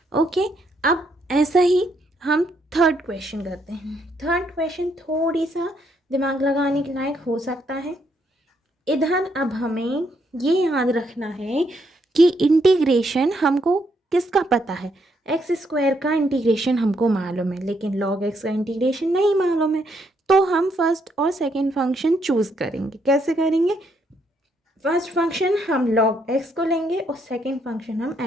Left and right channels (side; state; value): both; normal; correlation 0.74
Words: ओके, अब ऐसा ही हम थर्ड क्वेश्चन करते हैं। थर्ड क्वेश्चन थोड़ी सा दिमाग लगाने के लायक हो सकता है। इधर अब हमें ये याद रखना है कि इंटीग्रेशन हमको किसका पता है, एक्स स्क्वायर का इंटीग्रेशन हमको मालूम है लेकिन लॉग एक्स का इंटीग्रेशन नहीं मालूम है। तो हम फर्स्ट और सेकंड फंक्शन चूज़ करेंगे। कैसे करेंगे, फर्स्ट फंक्शन हम लॉग एक्स को लेंगे और सेकंड फंक्शन हम